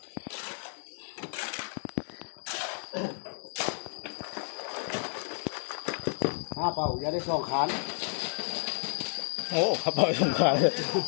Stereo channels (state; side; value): silent; right; digital silence